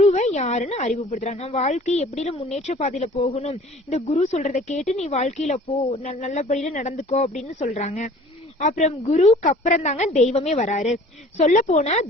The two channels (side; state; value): both; normal; correlation 0.48